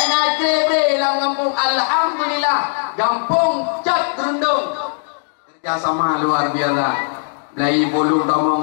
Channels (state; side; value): silent; right; digital silence